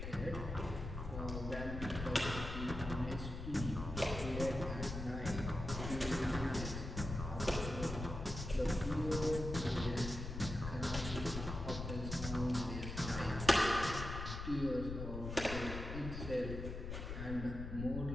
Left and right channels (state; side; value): noise; left; rumble, 6 dB below the sound